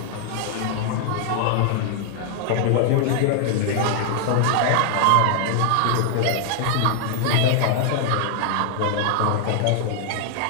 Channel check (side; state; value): both; different; correlation 0.00